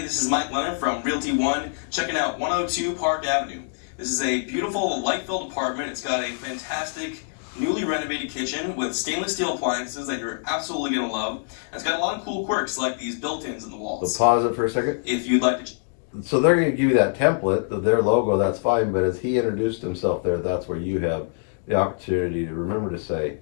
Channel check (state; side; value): silent; right; digital silence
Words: this is Mike Leonard from Realty One, checking out 102 Park Avenue. This is a beautiful light-filled apartment. It's got a fantastic, newly renovated kitchen with stainless steel appliances that you're absolutely going to love. And it's got a lot of cool quirks like these built-ins in the walls. So pause it for a second. If you'd like to... So they're going to give you that template, their logo, that's fine, but as he introduced himself there, that's where you have the opportunity to remember to say,